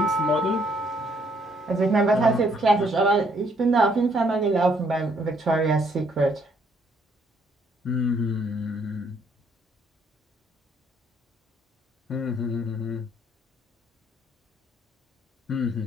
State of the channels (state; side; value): normal; both; correlation 0.68